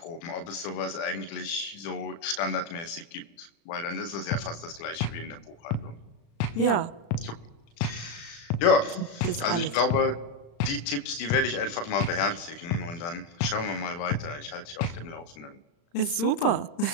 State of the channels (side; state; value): right; late; 35 ms